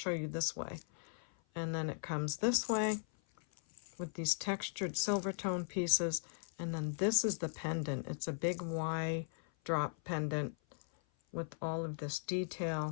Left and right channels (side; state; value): right; silent; 52 dB below the other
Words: you this way. And then it comes this way with these textured silver tone pieces. And then this is the pendant. It's a big Y drop pendant with all of this